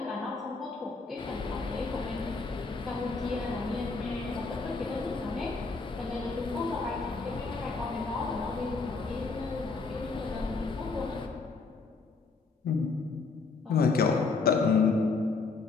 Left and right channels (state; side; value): quieter; right; 4.2 dB